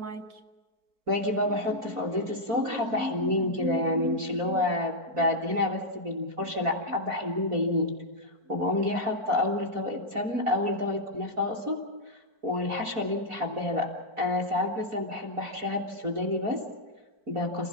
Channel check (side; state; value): left; late; 4.5 ms